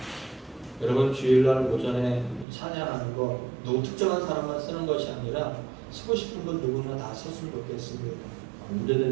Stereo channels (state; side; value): drops out; left; at 2.5 s